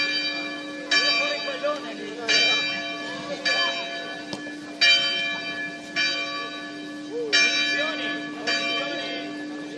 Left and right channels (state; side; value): identical; both; correlation 1.00